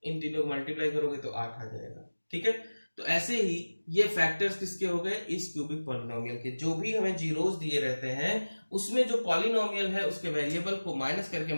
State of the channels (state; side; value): inverted; both; correlation -1.00